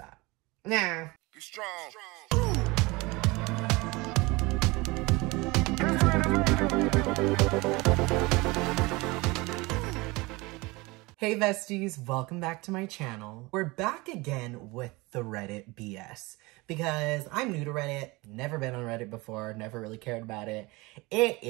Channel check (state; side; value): quieter; left; 23.5 dB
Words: Nah. Be strong. Hey besties, welcome back to my channel. We're back again with the Reddit BS because I'm new to Reddit, never been on Reddit before, never really cared about it. It